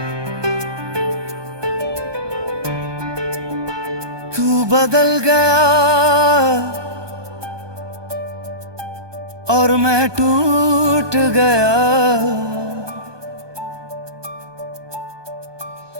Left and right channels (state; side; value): late; left; 1.2 ms